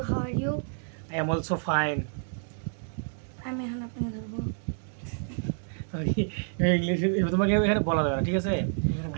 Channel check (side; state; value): left; silent; digital silence